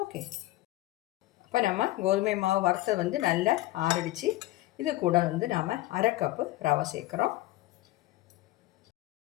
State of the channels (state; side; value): quieter; right; 17.5 dB